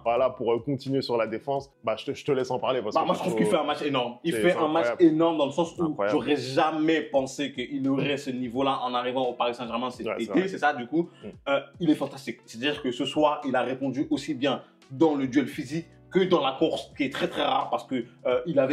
Voilà, pour continuer sur la défense. Bah, je te laisse en parler. Parce que moi, je trouve qu'il fait un match énorme. Il fait un match énorme dans le sens où j'aurais jamais pensé qu'il aurait ce niveau-là en arrivant au Paris Saint-Germain cet été. C'est ça, du coup. Il est fantastique. C'est-à-dire que ce soir, il a répondu aussi bien dans le duel physique que dans la course, qui est très rare parce que il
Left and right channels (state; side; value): identical; both; correlation 1.00